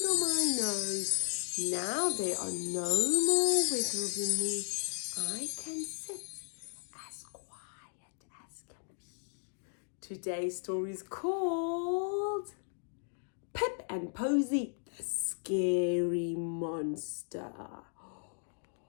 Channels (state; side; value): silent; right; digital silence